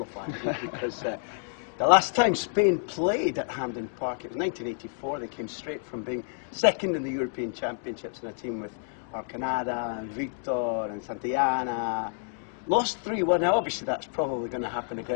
because the last time Spain played at Hampden Park, it was 1984. They came straight from being second in the European Championships in a team with Arcanada and Victor and Santillana. Lost 3-1. Now obviously that's probably going to happen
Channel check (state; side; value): silent; right; digital silence